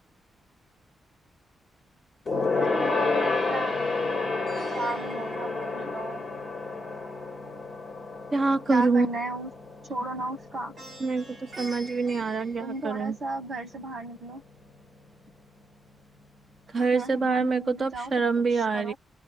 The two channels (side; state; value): both; normal; correlation 0.82